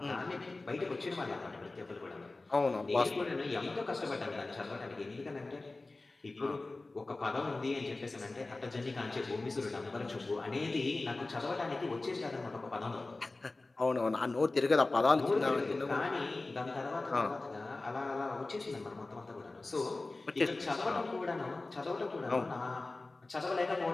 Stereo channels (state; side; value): quieter; right; 3.2 dB